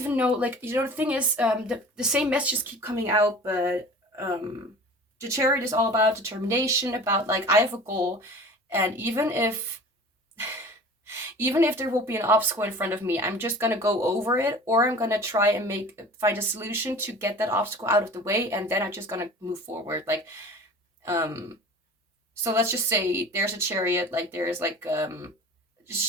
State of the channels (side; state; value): both; normal; correlation 0.41